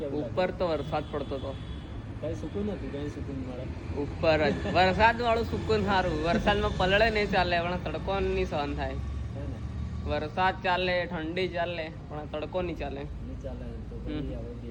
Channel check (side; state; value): both; identical; correlation 1.00